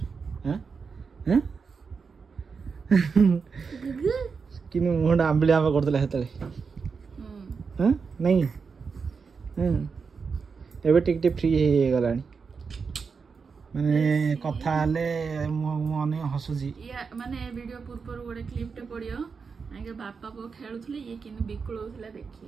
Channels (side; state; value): left; quieter; 5.4 dB